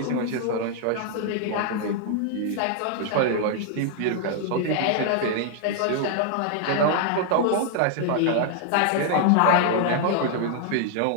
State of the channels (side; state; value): both; different; correlation 0.00